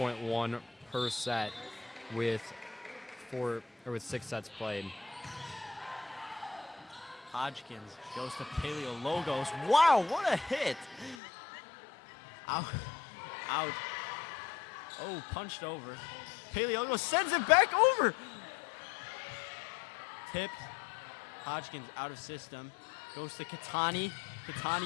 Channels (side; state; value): right; drops out; at 11.2 s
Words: per set with 6 sets played. Hodgkins goes to Paleologos. Wow, what a hit! Out. Oh, punched over. Paleologos sends it back over! Tipped. Hodgkins out of system. Goes to Kitani.